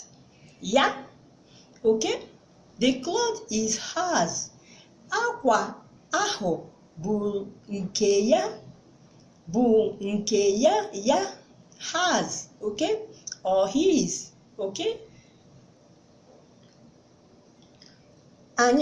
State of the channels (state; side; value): identical; both; correlation 1.00